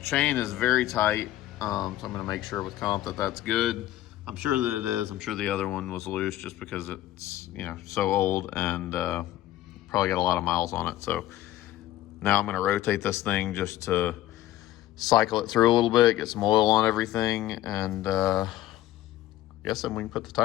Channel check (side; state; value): right; quieter; 14.4 dB